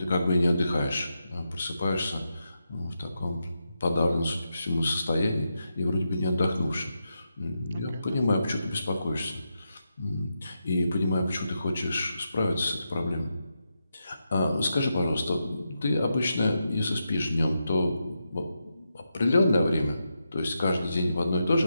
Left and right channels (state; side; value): inverted; both; correlation -0.86